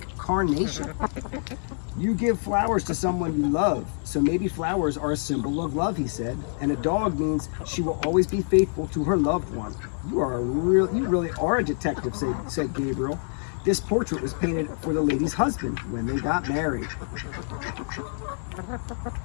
carnation. You give flowers to someone you love, so maybe flowers are a symbol of love, he said. And a dog means she will always be faithful to her loved one. You really are a detective, said Gabriel. This portrait was painted for the lady's husband when they got married.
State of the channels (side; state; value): right; silent; 60 dB below the other